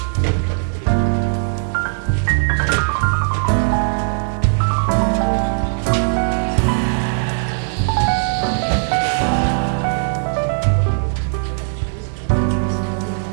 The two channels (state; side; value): silent; left; 67 dB below the other